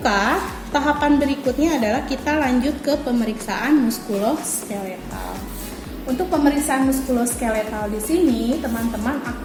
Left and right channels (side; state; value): both; identical; correlation 1.00